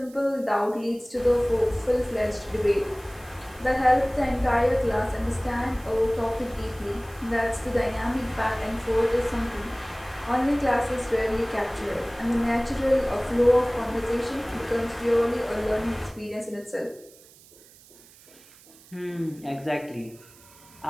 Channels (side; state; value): right; noise; hiss, 24 dB below the sound